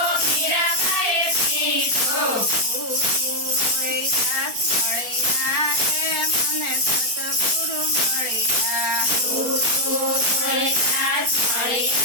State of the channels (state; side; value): late; left; 4.3 ms